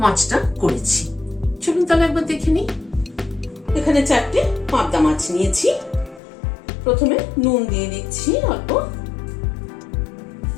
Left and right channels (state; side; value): drops out; right; at 6.2 s